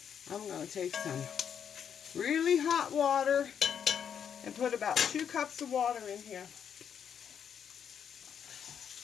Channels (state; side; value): quieter; right; 8.0 dB